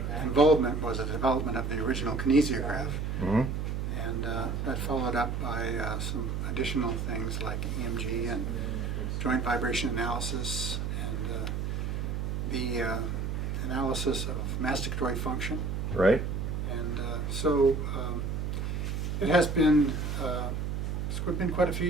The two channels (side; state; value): right; noise; hum, 2 dB below the sound